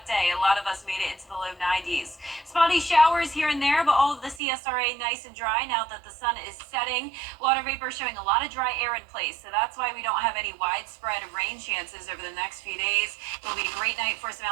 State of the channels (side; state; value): left; drops out; at 4.4 s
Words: day. A lot of us made it into the low 90s. Spotty showers here and there, but all of the CSRA nice and dry now that the sun is setting. Water vapor showing a lot of dry air in place, so that's why we don't have any widespread rain chances over the next few days. It'll be a great night for some